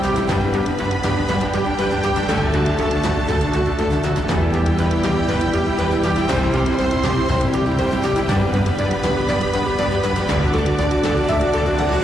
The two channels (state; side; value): normal; both; correlation 0.84